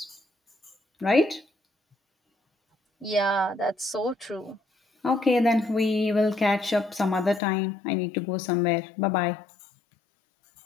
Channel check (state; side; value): drops out; right; at 7.4 s